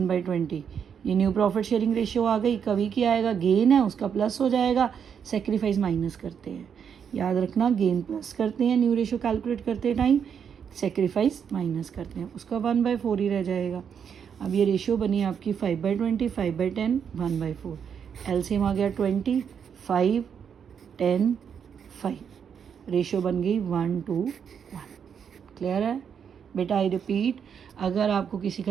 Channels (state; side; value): quieter; left; 7.5 dB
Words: ये न्यू प्रॉफिट शेयरिंग रेशियो आ गई। कवि की आएगा, गेन है उसका प्लस हो जाएगा, सेक्रीफाइस माइनस करते हैं, याद रखना, गेन प्लस करते हैं न्यू रेशो कैलकुलेट करते टाइम, सेक्रीफाइस माइनस करते हैं, उसका 1/4 ही रह जाएगा। अब ये रेशियो बनी आपकी 5/20, 5/10, 1/4। एलसीएम आ गया 20, 5, 10, 5। रेशियो बन गई 1:1। क्लियर है बेटा? आई रिपीट, अगर आपको किसी